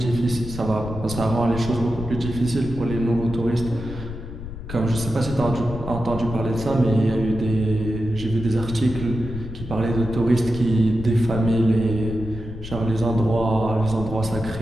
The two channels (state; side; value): noise; left; rumble, 10 dB below the sound